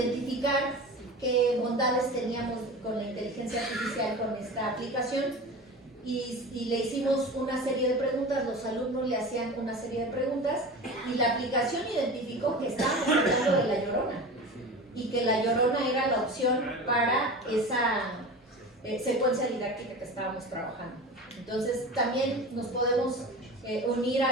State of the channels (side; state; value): both; normal; correlation 0.32